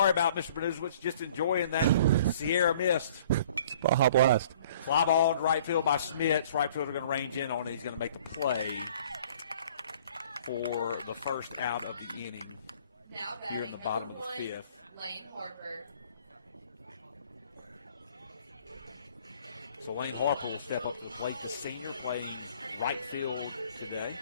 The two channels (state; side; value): inverted; both; correlation -0.53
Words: about, Mr. Benuzowitz. Just enjoying that Sierra mist. Baja Blast. Fly ball to right field by Schmitz. Right fielder going to range in on it. He's going to make the play for the first out of the inning. Now batting Here in the bottom number of the 1, 5th. Lane Harper. So Lane Harper will step up to the plate, the senior playing right field today.